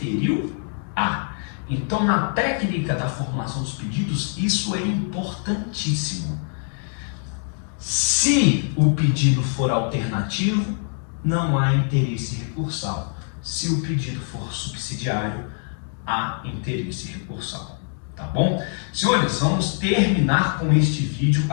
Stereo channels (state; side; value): silent; right; 56 dB below the other